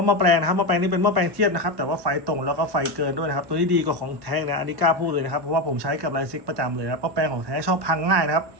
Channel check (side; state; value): left; late; 1.1 ms